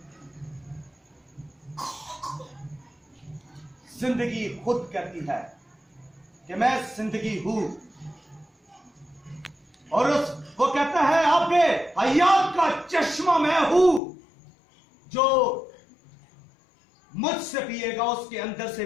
जिंदगी खुद कहती है कि मैं जिंदगी हूं, और वो कहता है आपके हयात का चश्मा मैं हूं, जो मुझसे पिएगा उसके अंदर से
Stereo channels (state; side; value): drops out; right; at 14.0 s